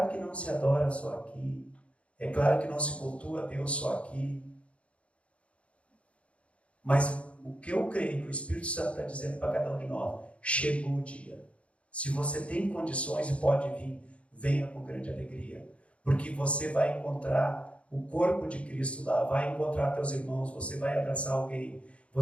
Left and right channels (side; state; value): right; late; 0.062 ms